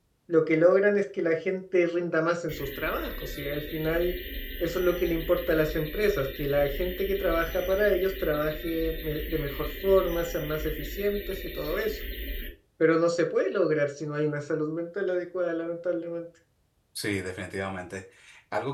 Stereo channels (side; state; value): both; identical; correlation 1.00